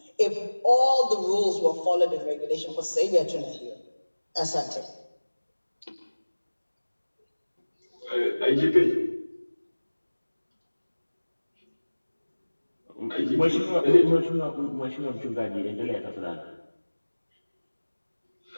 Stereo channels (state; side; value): inverted; both; correlation -1.00